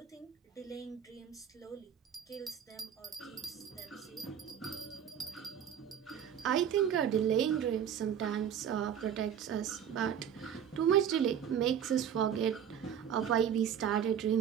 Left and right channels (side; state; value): left; quieter; 8.8 dB